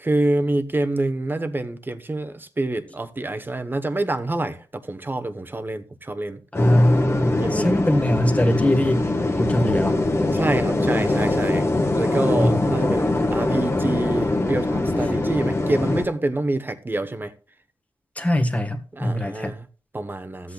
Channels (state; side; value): normal; both; correlation 0.93